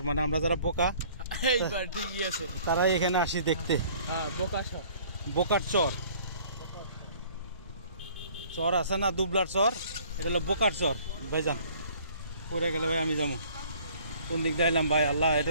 মানে আমরা যারা বোকা তারাই এখানে আসি দেখতে। বোকার চর, চর আছে না দুবলার চর, এটা হলো বোকার চর। ভাইজান পড়ে গেলে ভাই আমি যাবো কোন দিক দিয়ে এলাম ভাই? আল্লাহ, এটা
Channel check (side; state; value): both; inverted; correlation -0.54